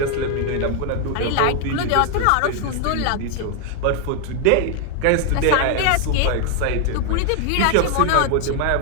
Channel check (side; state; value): both; different; correlation 0.00